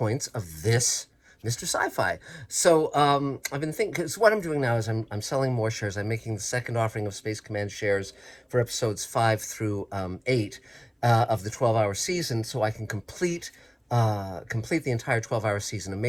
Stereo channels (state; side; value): identical; both; correlation 1.00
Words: of this Mr. Sci-Fi. So I've been thinking, because what I'm doing now is I'm selling more shares. I'm making the second offering of Space Command shares for episodes 5 through 8 of the 12-hour season, so I can complete the entire 12-hour season. A